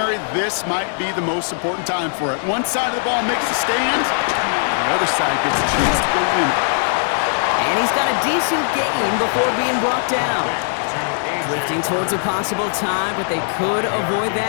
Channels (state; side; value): silent; right; 59 dB below the other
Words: this might be the most important time for it. One side of the ball makes a stand, and the other side gets a chance to go win it. And he's got a decent gain before being brought down. Drifting towards a possible tie, but they could avoid